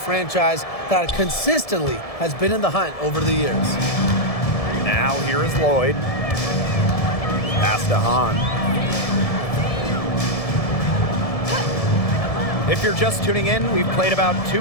that consistently has been in the hunt over the years. Now here is Lloyd. Pass to Hahn. If you're just tuning in, we've played about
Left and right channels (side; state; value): right; late; 1.7 ms